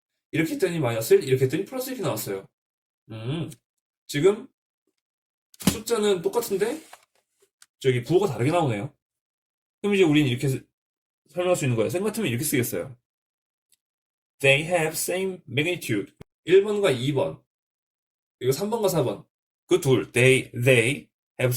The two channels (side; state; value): both; identical; correlation 1.00